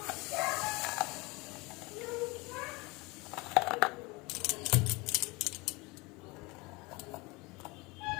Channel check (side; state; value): right; quieter; 24.9 dB